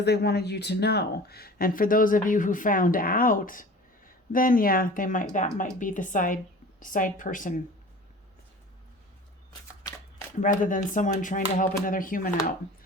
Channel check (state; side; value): normal; both; correlation 0.41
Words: they wanted you to know. And for those of you who found out, then yeah, that might be the side person rather than someone trying to help another human out